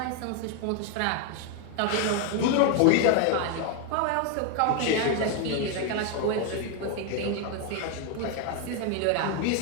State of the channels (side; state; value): both; different; correlation 0.01